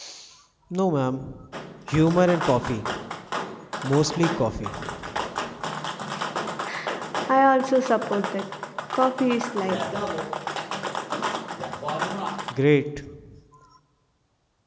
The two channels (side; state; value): both; identical; correlation 1.00